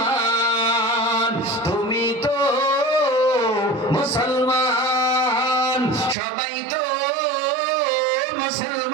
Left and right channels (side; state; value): left; drops out; at 6.2 s